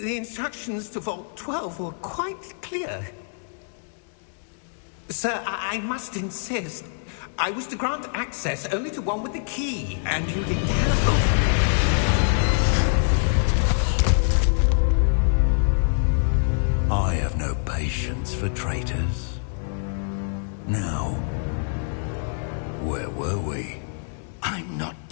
instructions to Vault 12 were quite clear. Sir, I must insist. I was to grant access only to one with the key, and you didn't have... I have no patience for traitors. Now, where were we? I'm not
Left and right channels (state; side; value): silent; right; digital silence